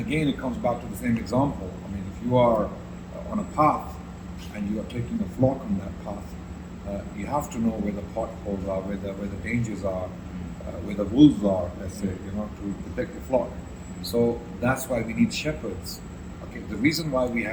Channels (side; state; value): both; identical; correlation 1.00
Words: again, it comes back to the same example. I mean, if you are on a path and you are taking a flock on that path, you have to know where the potholes are, where the dangers are, where the wolves are, let's say, to protect the flock. So that's why we need shepherds. Okay, the reason why we